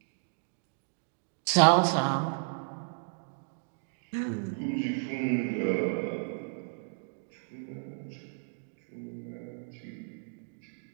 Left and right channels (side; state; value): left; silent; digital silence